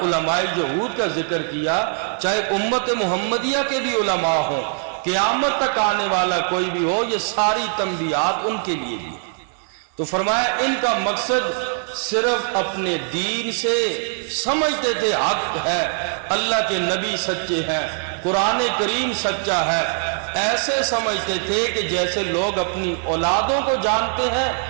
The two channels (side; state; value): left; silent; 58 dB below the other